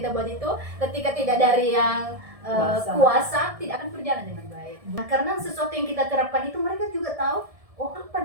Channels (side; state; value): left; late; 1.6 ms